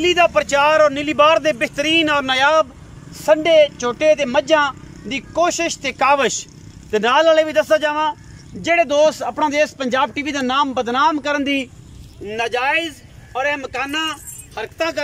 दा प्रचार और नीली बार दे बेहतरीन और नायाब संडे झोटे ते मज्जां दी कोशिश ते काविश ते नाल वाले भी दस्सा जावां जेड़े दोस्त अपना देश पंजाब टीवी का नाम बदनाम करन दी नाजायज़ और मकाना हरकतां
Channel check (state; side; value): identical; both; correlation 1.00